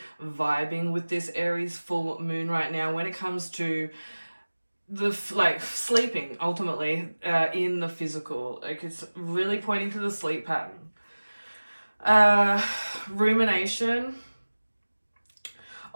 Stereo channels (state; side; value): inverted; both; correlation -1.00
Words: vibing with this Aries full moon right now when it comes to the sleeping ultimately in the physical. Like, it's really pointing to the sleep pattern. Rumination